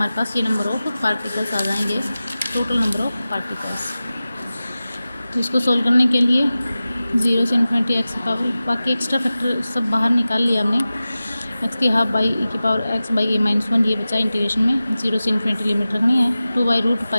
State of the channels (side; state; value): both; inverted; correlation -0.96